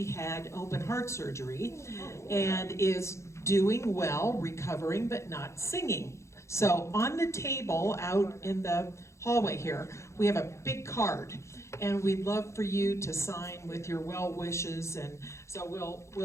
had open heart surgery and is doing well, recovering, but not singing. So on the table out in the hallway here, we have a big card, and we'd love for you to sign with your well wishes. And so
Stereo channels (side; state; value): right; late; 0.14 ms